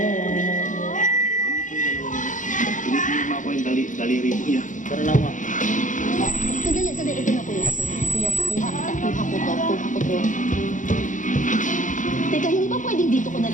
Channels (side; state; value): right; late; 0.37 ms